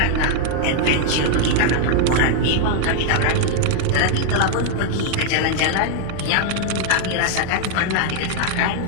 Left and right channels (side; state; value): both; different; correlation 0.00